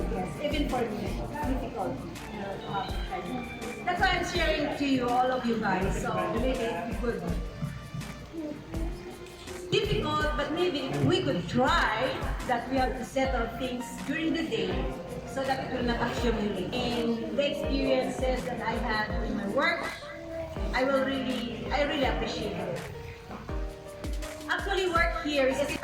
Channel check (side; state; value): both; identical; correlation 1.00